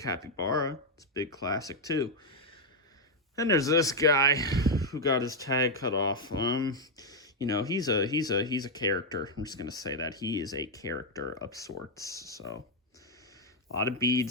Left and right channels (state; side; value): normal; both; correlation 0.01